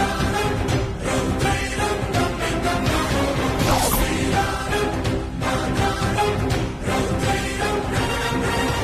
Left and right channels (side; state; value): both; identical; correlation 1.00